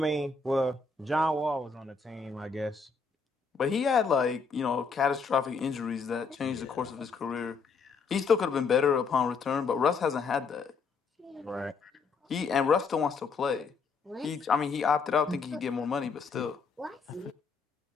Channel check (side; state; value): right; quieter; 4.9 dB